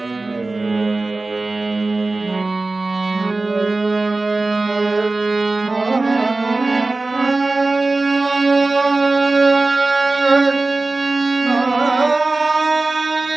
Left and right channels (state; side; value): quieter; left; 3.3 dB